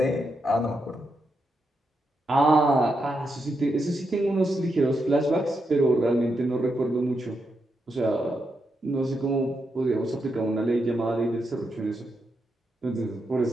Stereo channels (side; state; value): both; normal; correlation 0.83